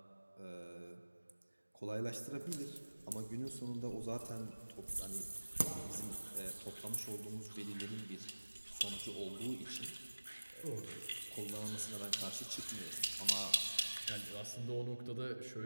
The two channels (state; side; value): inverted; both; correlation -1.00